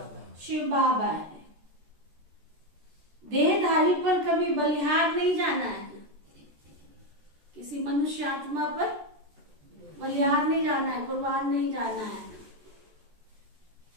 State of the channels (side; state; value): left; late; 14 ms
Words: शिव बाबा है। देहधारी पर कभी बलिहार नहीं जाना है। किसी मनुष्य आत्मा पर बलिहार नहीं जाना है, कुर्बान नहीं जाना है।